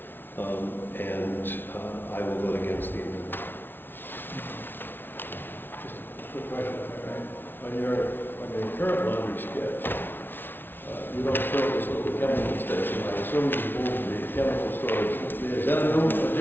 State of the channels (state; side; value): late; right; 0.10 ms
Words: And I will vote against the amendment. Quick question, on your current laundry sketch, you don't show this little chemical station. I assume you moved the chemical storage. Is that a new